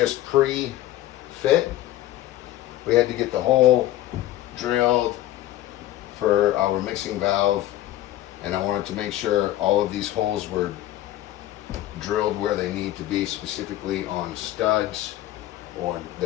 pre-fit. We had to get the hole drilled for our mixing valve, and I wanted to make sure all of these holes were drilled where they need to be, specifically on studs or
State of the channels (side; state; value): right; quieter; 14.2 dB